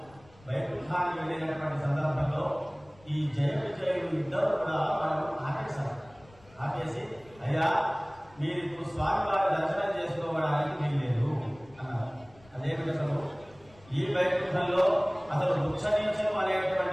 వైకుంఠానికి వెళ్ళినటువంటి సందర్భంలో ఈ జయ విజయులు 2 కూడా వాళ్ళు ఆపేశారు. ఆపేసి అయ్యా మీరు ఇప్పుడు స్వామివారి దర్శనం చేసుకోవడానికి వీల్లేదు అన్నారు. అదేమిటి అసలు ఈ వైకుంఠంలో అసలు వృక్షనీచం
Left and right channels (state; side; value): noise; left; rumble, 26 dB below the sound